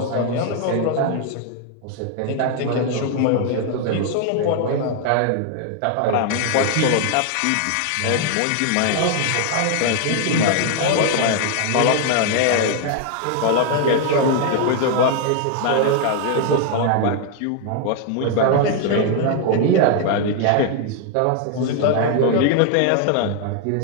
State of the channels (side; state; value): both; different; correlation 0.00